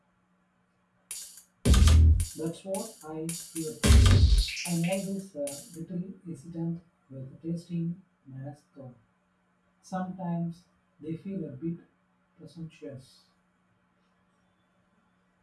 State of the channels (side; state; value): both; identical; correlation 1.00